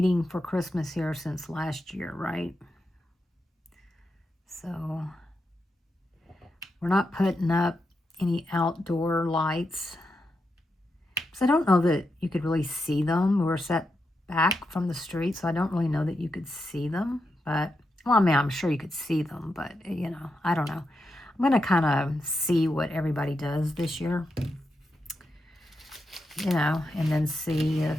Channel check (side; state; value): both; normal; correlation 0.85